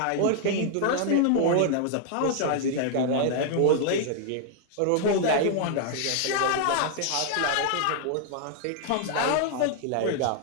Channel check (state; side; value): different; both; correlation -0.01